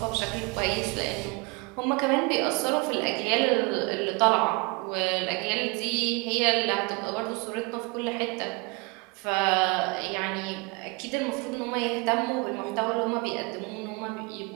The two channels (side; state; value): left; quieter; 28.3 dB